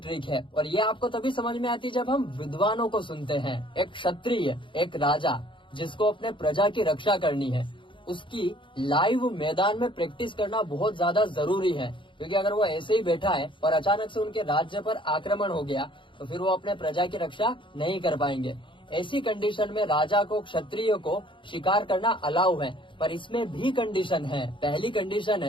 है। और ये आपको तभी समझ में आती है जब हम विद्वानों को सुनते हैं। एक क्षत्रिय, एक राजा जिसको अपने प्रजा की रक्षा करनी है, उसकी लाइव मैदान में प्रैक्टिस करना बहुत ज्यादा जरूरी है। क्योंकि अगर वो ऐसे ही बैठा है और अचानक से उनके राज्य पर आक्रमण हो गया तो फिर वो अपने प्रजा की रक्षा नहीं कर पाएंगे। ऐसी कंडीशन में राजा को, क्षत्रिय को शिकार करना अलाउ है, पर इसमें भी कंडीशन है। पहली कंडीशन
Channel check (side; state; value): right; late; 0.24 ms